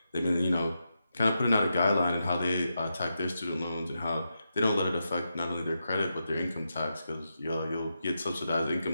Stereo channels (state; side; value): inverted; both; correlation -0.86